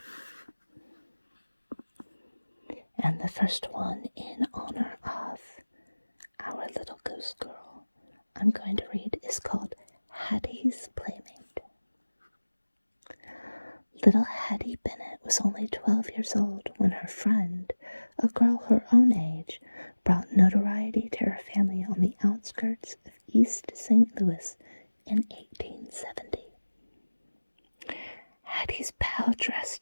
And the first one, in honor of our little ghost girl, I'm going to read is called Hattie's Playmate. Little Hattie Bennett was only 12 years old when her friend, a girl her own age, brought notoriety to her family on the outskirts of East St. Louis in 1870. Hattie's pal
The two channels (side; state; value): both; inverted; correlation -1.00